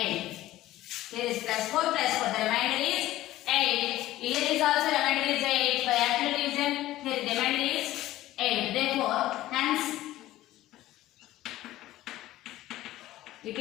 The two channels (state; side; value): quieter; right; 15.4 dB